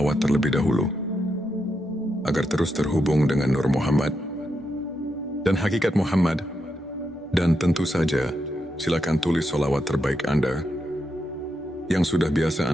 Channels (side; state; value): both; normal; correlation 0.84